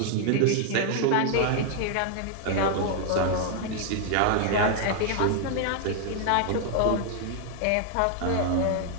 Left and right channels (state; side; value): different; both; correlation 0.00